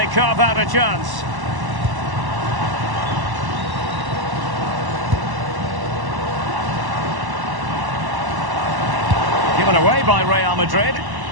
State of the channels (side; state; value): left; late; 1.1 ms